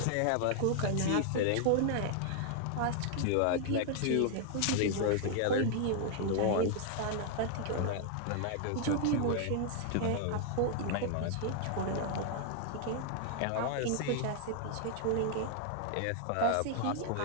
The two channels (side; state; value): both; different; correlation 0.00